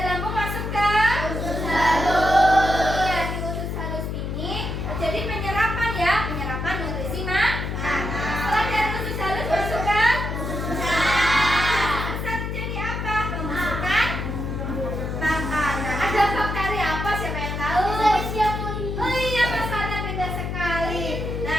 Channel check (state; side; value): noise; left; hum, 3 dB below the sound